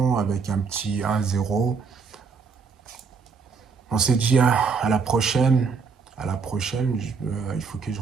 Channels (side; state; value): left; quieter; 5.3 dB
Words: avec un petit 1-0. On s'est dit à la prochaine. À la prochaine, il faut que je